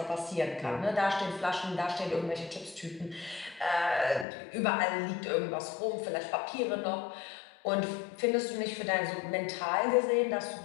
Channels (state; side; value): drops out; right; at 4.2 s